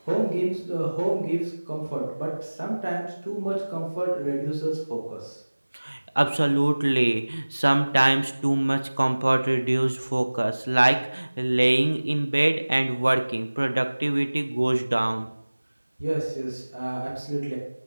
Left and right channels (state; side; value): inverted; both; correlation -1.00